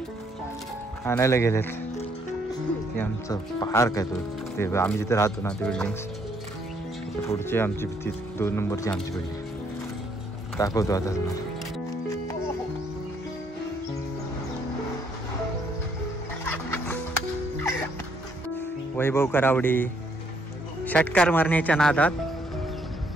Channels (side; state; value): both; normal; correlation 0.69